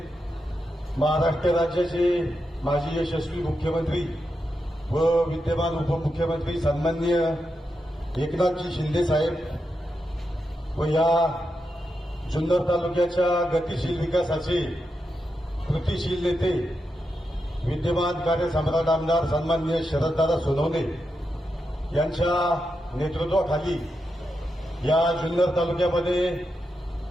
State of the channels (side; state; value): both; normal; correlation 0.86